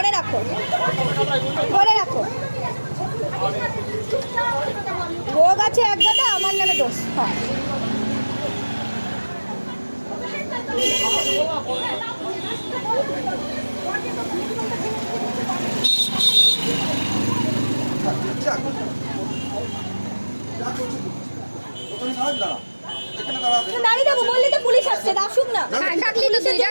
রাখো। রোগ আছে এক গাদা, আমার নামে দোষ। যা করছিস ওখানে দাঁড়া এখানে দাঁড়া দাঁড়িয়ে যাবো বললি তো পুলিশ আসছে আসুক না হ্যাঁ, ডাকলি তো তুই,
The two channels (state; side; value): inverted; both; correlation -1.00